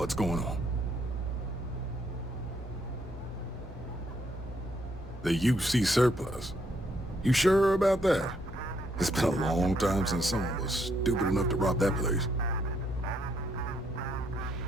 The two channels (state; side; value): normal; both; correlation 0.72